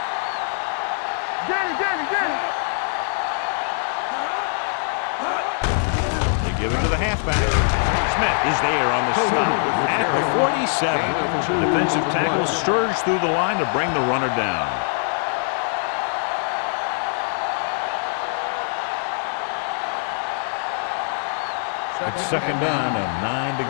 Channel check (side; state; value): right; silent; 60 dB below the other